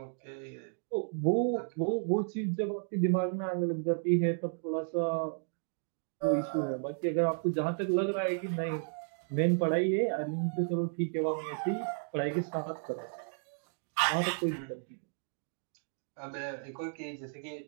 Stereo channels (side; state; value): left; silent; digital silence